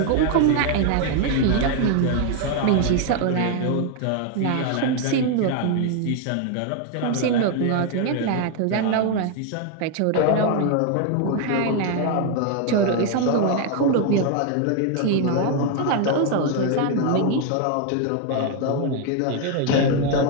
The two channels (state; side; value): different; both; correlation 0.00